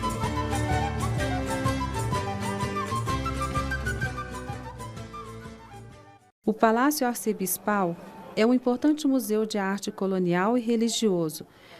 O Palácio Arcebispal é um importante museu de arte colonial e religioso,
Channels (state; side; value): identical; both; correlation 1.00